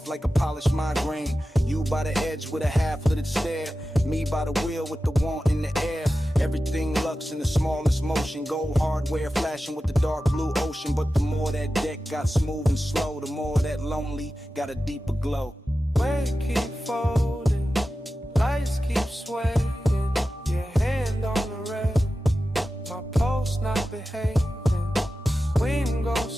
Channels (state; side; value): normal; both; correlation 0.94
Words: like a polished migraine. You by the edge with a half-littered stare. Me by the wheel with the want in the air. Everything lux in the smallest motion. Gold hardware flashing with the dark blue ocean. But the more that deck got smooth and slow, the more that lonely got a deeper glow. Weight keep folding, lights keep swaying. Your hand on the rail, my pulse not behaving. Wind